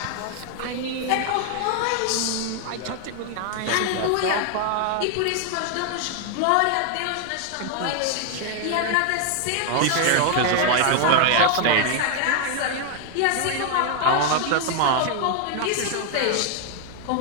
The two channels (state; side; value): different; both; correlation 0.00